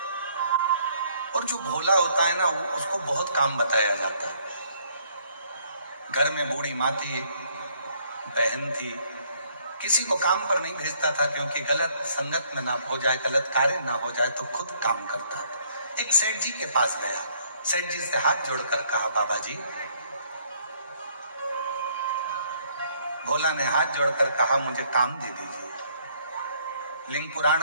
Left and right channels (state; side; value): inverted; both; correlation -0.65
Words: और जो भोला होता है ना, उसको बहुत काम बताया जाता है। घर में बूढ़ी माँ थी, बहन थी, किसी को काम पर नहीं भेजता था क्योंकि गलत संगत में ना हो जाए, गलत कार्य ना हो जाए, तो खुद काम करता था। एक सेठ जी के पास गया, सेठ जी से हाथ जोड़कर कहा, बाबा जी। भोला ने हाथ जोड़कर कहा, मुझे काम दे दीजिए। लिंग